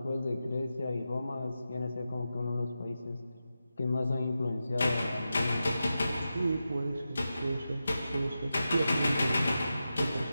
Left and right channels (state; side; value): inverted; both; correlation -0.91